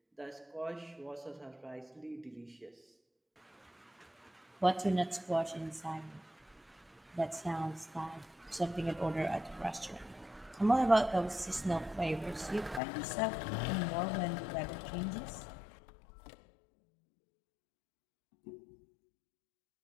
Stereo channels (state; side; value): drops out; right; at 12.8 s